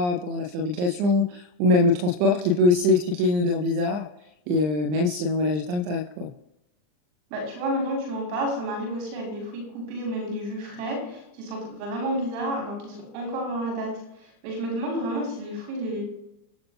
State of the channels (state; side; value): late; left; 39 ms